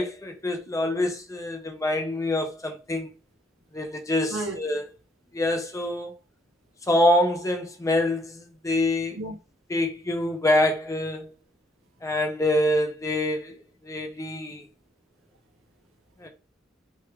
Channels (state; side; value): normal; both; correlation 0.68